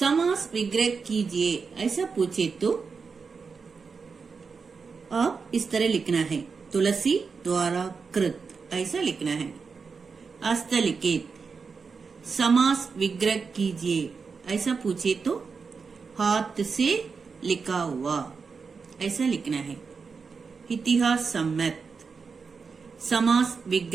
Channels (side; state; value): left; quieter; 5.2 dB